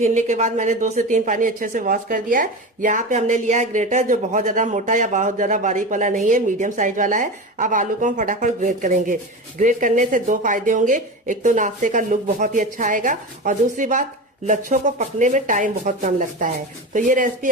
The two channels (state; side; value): normal; both; correlation 0.26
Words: के बाद मैंने 2 से 3 पानी अच्छे से वॉश कर दिया है। यहाँ पे हमने लिया है ग्रेटर, जो बहुत ज्यादा मोटा या बहुत ज्यादा बारीक वाला नहीं है, मीडियम साइज वाला है। अब आलू को हम फटाफट ग्रेट करेंगे। ग्रेट करने से 2 फायदे होंगे, एक तो नाश्ते का लुक बहुत ही अच्छा आएगा और दूसरी बात लच्छों को पकने में टाइम बहुत कम लगता है। तो ये रेसिपी